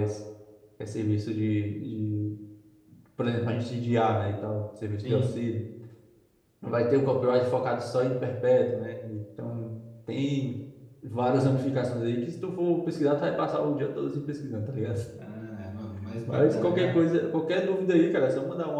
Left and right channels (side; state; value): both; identical; correlation 1.00